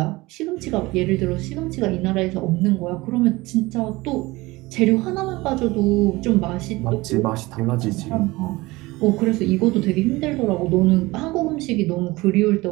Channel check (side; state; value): left; quieter; 21.0 dB